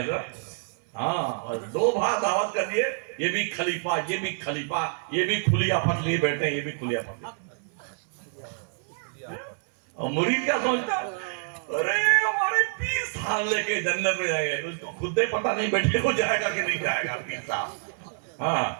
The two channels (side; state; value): left; silent; 60 dB below the other